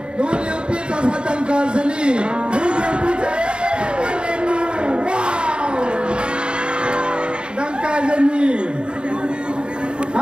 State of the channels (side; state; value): left; late; 0.052 ms